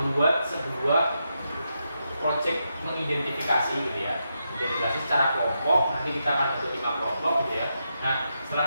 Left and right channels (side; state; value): both; inverted; correlation -0.85